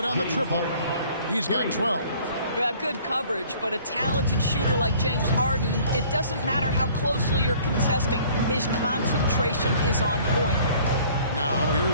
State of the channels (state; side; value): inverted; both; correlation -0.53